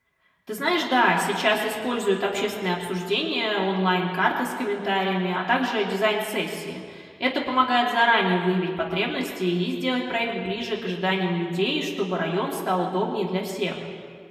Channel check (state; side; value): identical; both; correlation 1.00